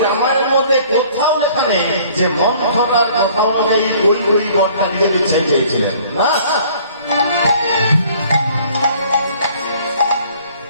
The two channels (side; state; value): both; inverted; correlation -0.55